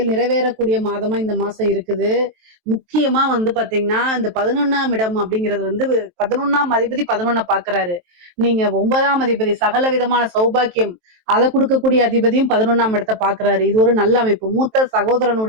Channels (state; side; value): late; left; 23 ms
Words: நிறைவேறக்கூடிய மாதமா இந்த மாசம் இருக்குது. முக்கியமா வந்து பாத்தீங்கன்னா, இந்த 11ஆம் இடம் அப்படிங்கிறது வந்து 11ஆம் அதிபதி 11 பாக்குறாரு. நீங்க 9ஆம் அதிபதி சகல விதமான சௌபாக்கியம் அதை கொடுக்கக்கூடிய அதிபதியும் 11ஆம் இடத்தை பாக்குறாரு. இது ஒரு நல்ல அமைப்பு. மூத்த